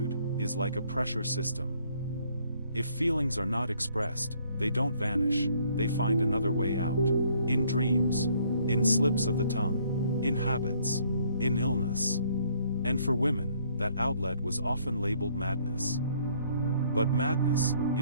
is like a pressure system. If feelings are not expressed, they don't vanish, they find another way out. In dreams, in slips of the tongue, in habits, in illness. And for women, that outlet was often labeled madness. But madness,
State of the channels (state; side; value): inverted; both; correlation -0.64